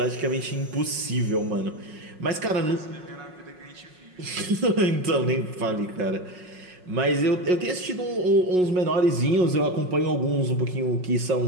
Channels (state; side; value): late; left; 5.5 ms